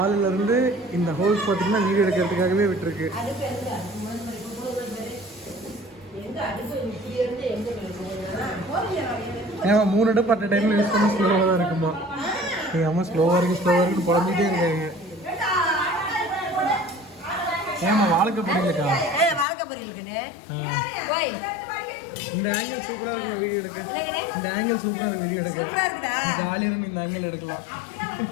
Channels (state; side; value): drops out; right; at 19.5 s